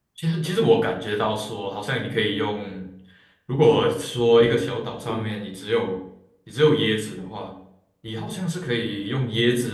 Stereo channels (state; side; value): identical; both; correlation 1.00